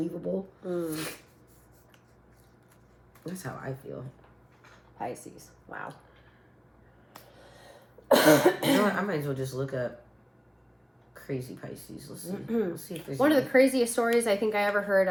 That's how I feel. Pisces. Wow. You know what? I might as well just look up crazy Pisces. Let's see. Let's see if there's one of the craziest stories I think I ever heard.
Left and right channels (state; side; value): identical; both; correlation 1.00